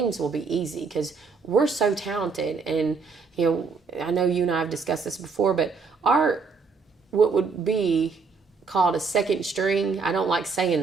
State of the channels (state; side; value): quieter; left; 4.8 dB